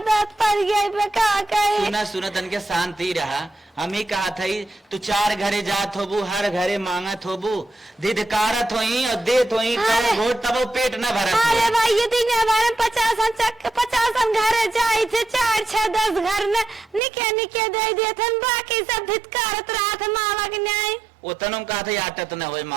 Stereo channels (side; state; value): left; drops out; at 17.0 s